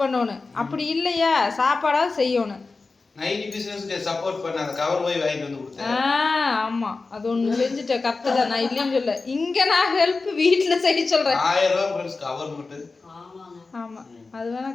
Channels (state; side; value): quieter; right; 3.9 dB